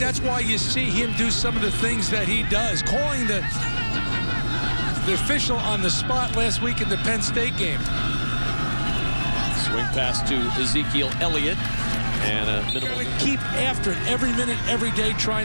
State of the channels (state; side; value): inverted; both; correlation -1.00